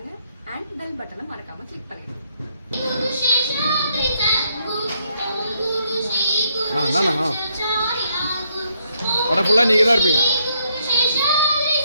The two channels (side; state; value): both; inverted; correlation -0.74